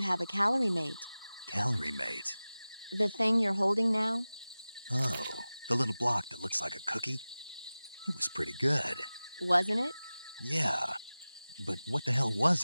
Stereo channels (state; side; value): inverted; both; correlation -0.97